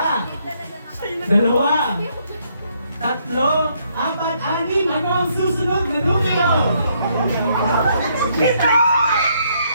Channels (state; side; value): inverted; both; correlation -0.71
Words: dalawa, tatlo, apat, anim. Ano ang susunod na numero? Pito!